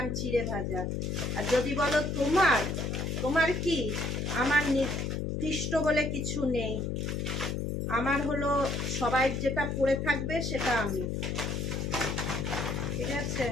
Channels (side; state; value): left; noise; hum, 1 dB below the sound